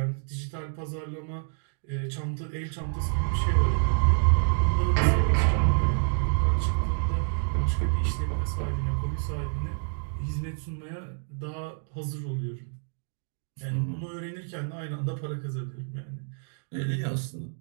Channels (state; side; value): silent; left; 59 dB below the other